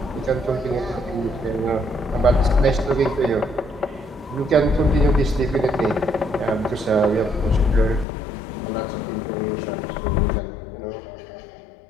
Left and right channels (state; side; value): drops out; right; at 8.1 s